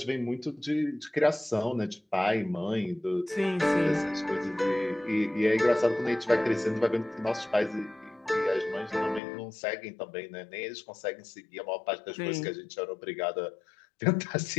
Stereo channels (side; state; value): right; drops out; at 9.2 s